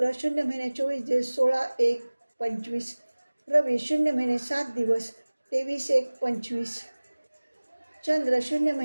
0 महिने 24 दिवस 16/1/25. रवी 0 महिने 7 दिवस 23/1/25. चंद्र 0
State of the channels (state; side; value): inverted; both; correlation -1.00